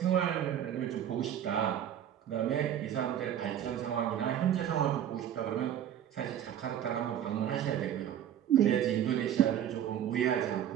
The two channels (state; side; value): quieter; left; 10.2 dB